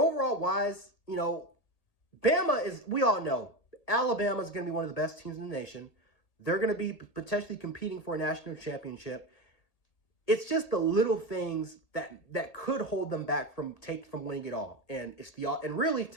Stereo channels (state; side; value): late; right; 1.8 ms